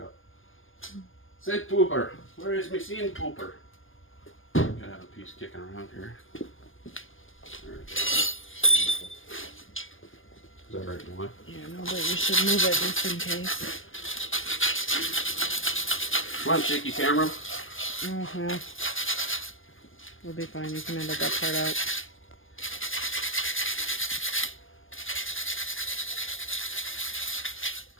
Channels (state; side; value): late; right; 0.59 ms